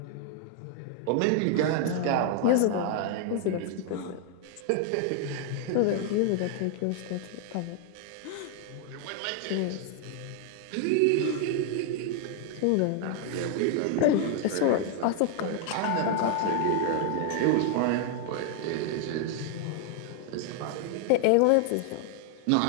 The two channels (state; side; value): different; both; correlation 0.00